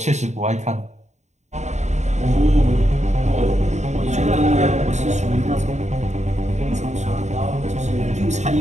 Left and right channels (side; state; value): left; late; 0.33 ms